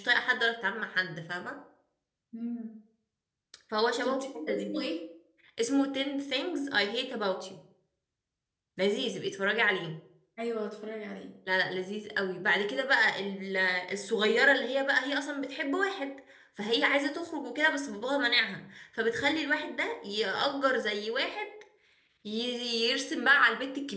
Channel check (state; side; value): identical; both; correlation 1.00